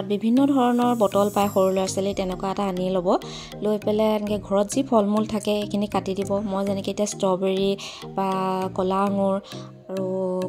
বিভিন্ন ধৰণৰ বটল পায় সৰু ল'ৰা ছোৱালী, তেনেকুৱা এটা আনি ল'ব। লৈ পেলাই এনেকৈ ঘৰত যি ফল মূল থাকে সেইখিনি কাটি দিব। মই যেনেকৈ এতিয়া ষ্ট্ৰবেৰী বা কলা আঙুৰ আৰু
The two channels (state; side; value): identical; both; correlation 1.00